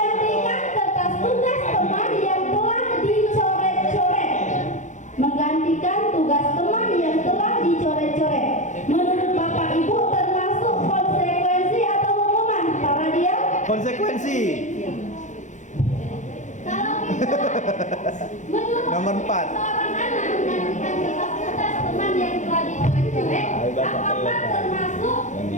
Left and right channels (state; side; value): late; right; 0.35 ms